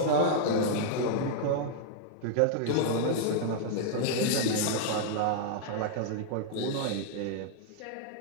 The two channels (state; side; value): different; both; correlation -0.01